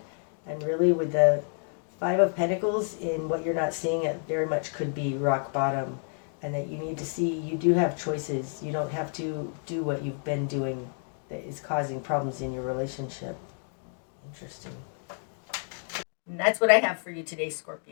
And really with the Five of Pentacles in what you're not seeing, it very much could be rock bottom. And that you need to see you do have choices. You don't have to do what you've been doing that is causing problems in your relationship. Interesting. And that's what I have for you today,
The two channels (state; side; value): silent; right; 55 dB below the other